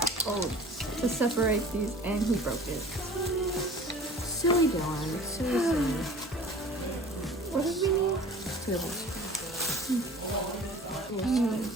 to separate these, and he broke it. Silly Dylan. Silly. What did we need?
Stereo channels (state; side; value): normal; both; correlation 0.44